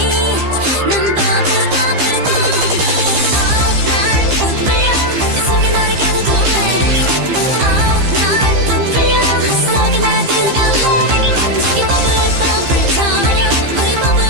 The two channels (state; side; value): late; left; 15 ms